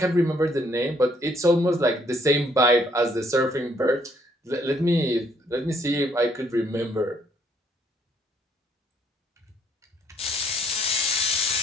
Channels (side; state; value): both; normal; correlation 0.67